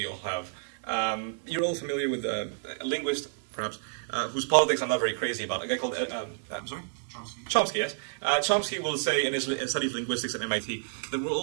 all have. You're all familiar with a linguist, perhaps, whose politics I'm not very crazy about. A guy called, I'm sorry? Chomsky, yes. Chomsky will say in his study of linguistics at MIT that we're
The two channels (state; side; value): silent; left; digital silence